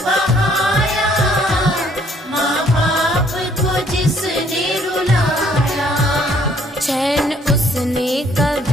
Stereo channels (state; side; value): normal; both; correlation 0.63